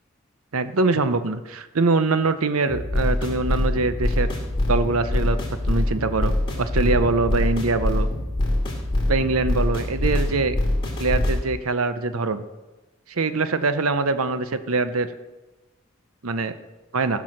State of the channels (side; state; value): both; normal; correlation 0.34